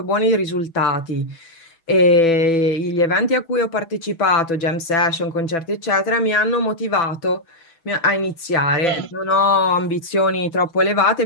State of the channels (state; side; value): late; right; 6.0 ms